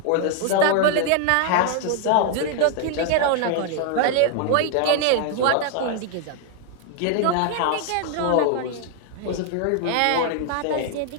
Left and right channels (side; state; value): both; different; correlation 0.00